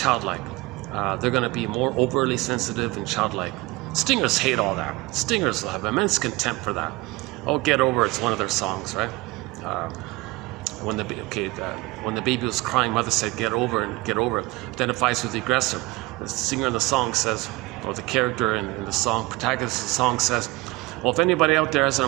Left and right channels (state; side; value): quieter; left; 22.0 dB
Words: They're going to be more overly sensitive and childlike. Stingers hate all that. Stingers will have immense contempt for that. Oh, get over it's one of their songs, right? When the baby was crying, mother said, get over it, identifies with the aggressor. The singer in the song says, or the character in the song, protagonist of the song says, well, if anybody out there has